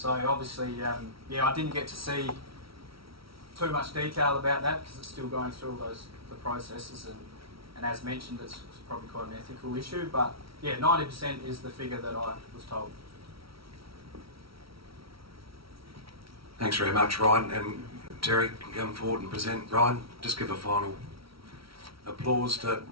obviously, yeah, I didn't get to see too much detail about that because it's still going through all the processes, and as mentioned, it's probably quite an ethical issue, but yeah, 90% is the figure that I was told. Thanks very much, Ryan. And Terry can come forward and present. Ryan, just give a final applause to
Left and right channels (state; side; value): late; left; 0.75 ms